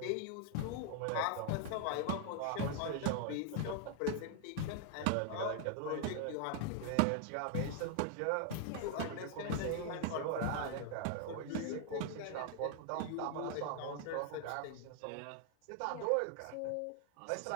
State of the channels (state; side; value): different; both; correlation 0.00